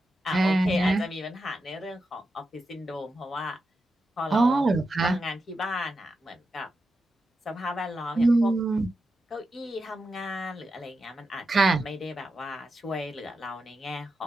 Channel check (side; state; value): both; normal; correlation 0.88